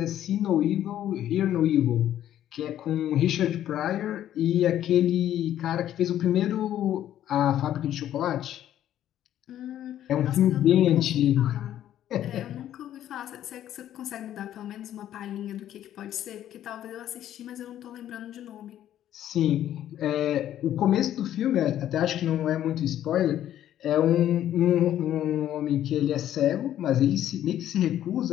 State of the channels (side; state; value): right; quieter; 11.6 dB